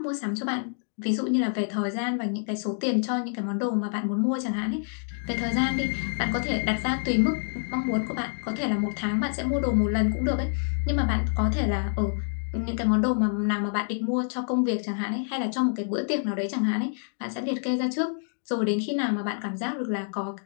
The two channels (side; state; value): right; silent; digital silence